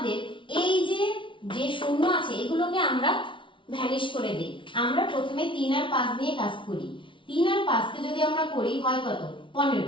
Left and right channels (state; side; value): late; right; 0.25 ms